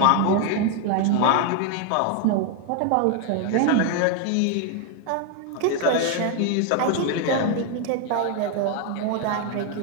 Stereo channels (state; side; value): different; both; correlation 0.01